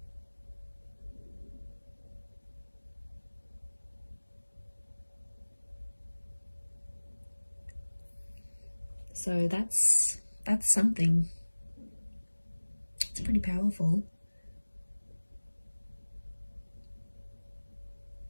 So that's something. It's pretty powerful.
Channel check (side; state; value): both; inverted; correlation -1.00